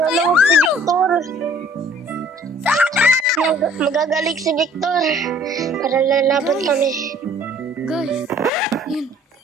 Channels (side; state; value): both; normal; correlation 0.55